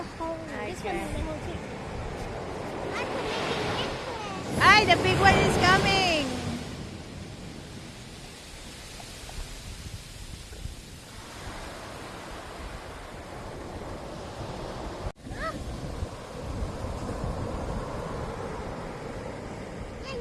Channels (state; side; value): identical; both; correlation 1.00